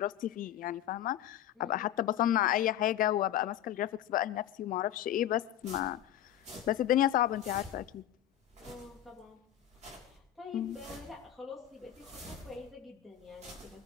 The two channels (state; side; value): quieter; right; 11.8 dB